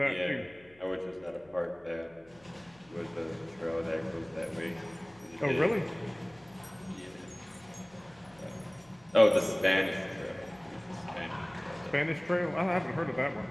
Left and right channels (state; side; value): noise; left; hum, 28 dB below the sound